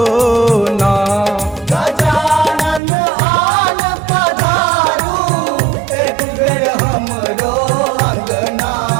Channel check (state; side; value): drops out; left; at 2.8 s